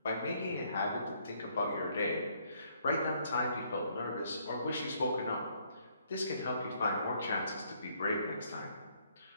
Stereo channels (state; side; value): inverted; both; correlation -0.68